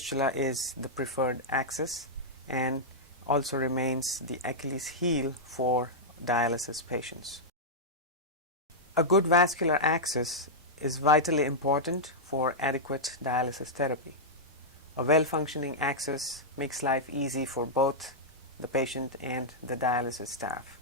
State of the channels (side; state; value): both; normal; correlation -0.08